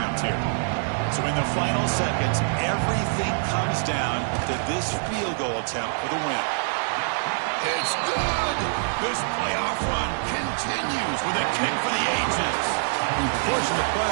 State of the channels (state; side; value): silent; left; 62 dB below the other